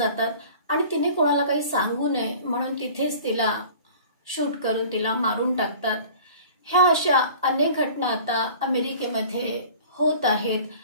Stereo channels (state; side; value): inverted; both; correlation -0.45